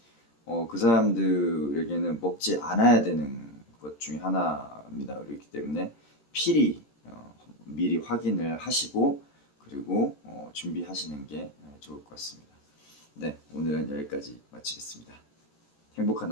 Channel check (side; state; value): right; late; 14 ms